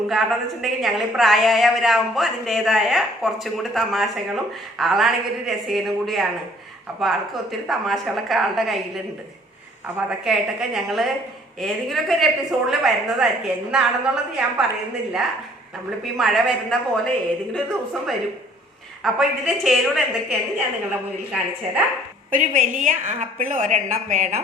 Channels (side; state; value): both; normal; correlation 0.57